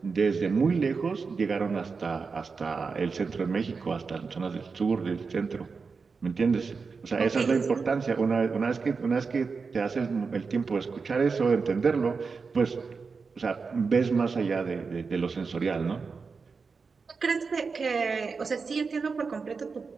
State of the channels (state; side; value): quieter; left; 4.9 dB